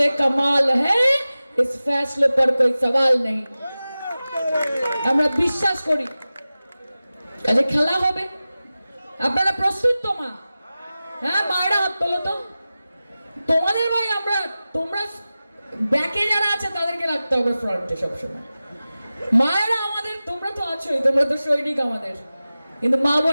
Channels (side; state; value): both; inverted; correlation -0.96